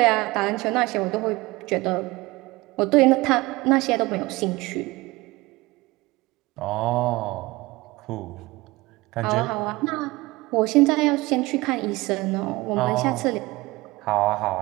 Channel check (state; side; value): quieter; left; 21.2 dB